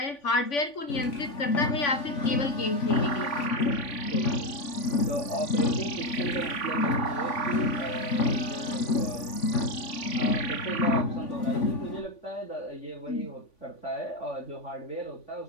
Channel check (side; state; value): right; late; 3.5 ms